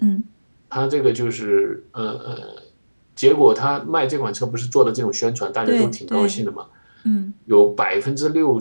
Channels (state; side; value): inverted; both; correlation -1.00